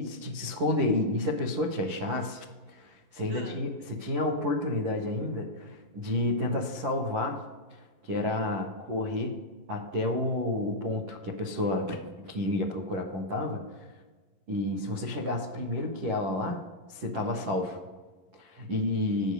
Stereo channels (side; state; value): left; late; 11 ms